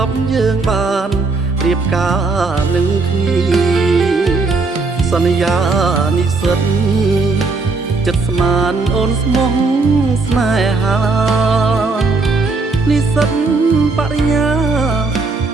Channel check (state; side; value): quieter; left; 3.8 dB